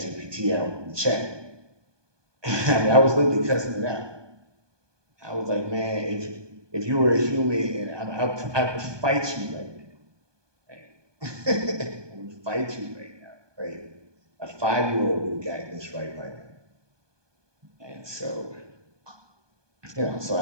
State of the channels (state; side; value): late; left; 1.2 ms